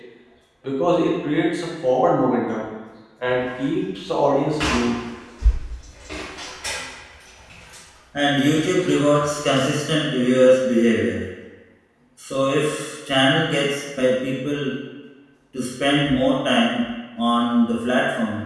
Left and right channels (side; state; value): both; identical; correlation 1.00